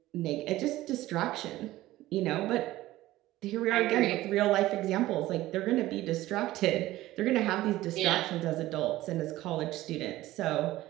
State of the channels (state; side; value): quieter; left; 16.3 dB